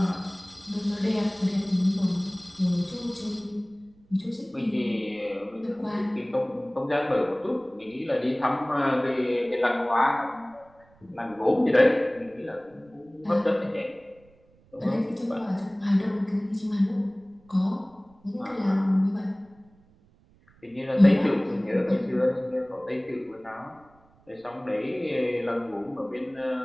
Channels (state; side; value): noise; right; rumble, 30 dB below the sound